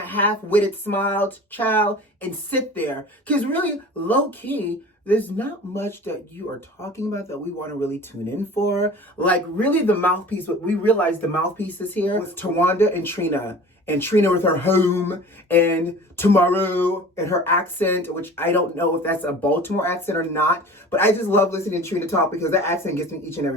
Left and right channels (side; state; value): both; normal; correlation 0.41